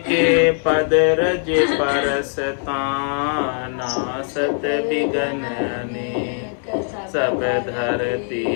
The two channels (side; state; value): right; silent; 65 dB below the other